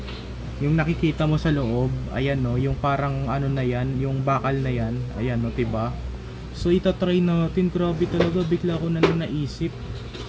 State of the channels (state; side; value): identical; both; correlation 1.00